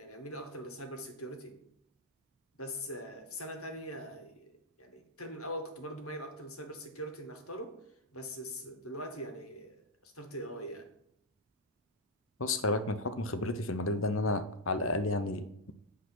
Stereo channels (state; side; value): normal; both; correlation -0.01